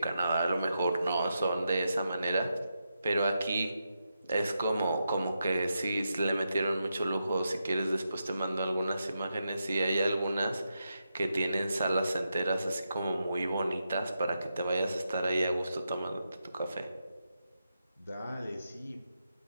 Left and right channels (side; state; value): both; inverted; correlation -0.86